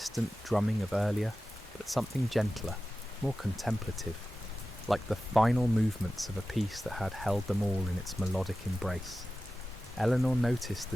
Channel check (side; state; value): both; normal; correlation 0.94